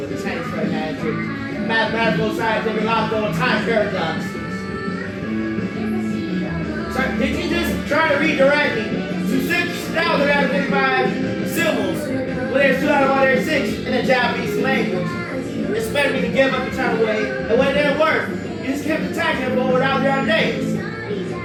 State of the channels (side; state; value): both; identical; correlation 1.00